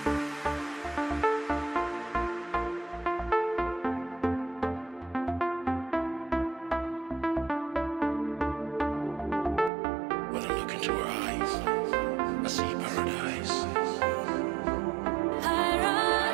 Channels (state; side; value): drops out; left; at 9.7 s